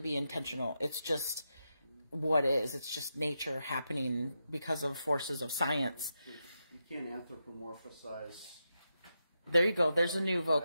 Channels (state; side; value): inverted; both; correlation -0.86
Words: intentional. It's just what is. It's just nature happening because of forces of science. You can't anthropomorphize. There you go. There's a new